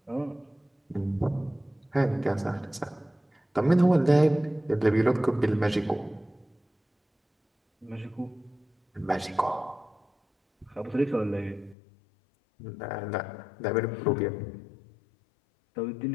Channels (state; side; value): drops out; right; at 11.8 s